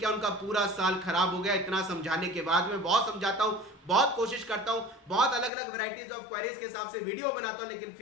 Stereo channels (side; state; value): right; drops out; at 5.5 s